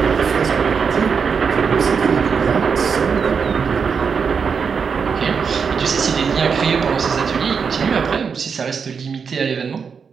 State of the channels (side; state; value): left; quieter; 6.0 dB